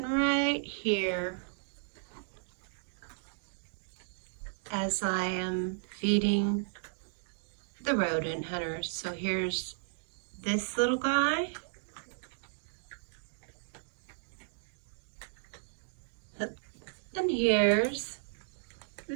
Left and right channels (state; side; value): silent; left; digital silence